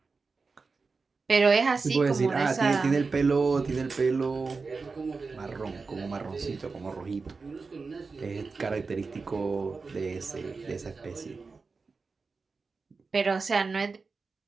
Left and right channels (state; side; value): quieter; left; 4.4 dB